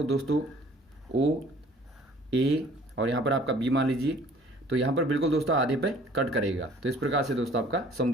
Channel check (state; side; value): normal; both; correlation 0.54